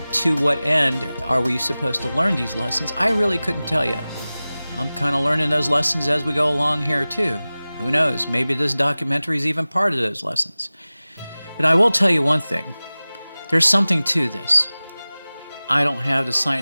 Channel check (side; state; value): both; inverted; correlation -0.98